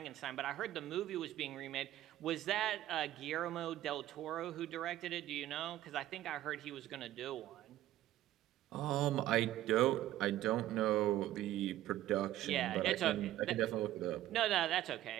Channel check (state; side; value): quieter; left; 13.8 dB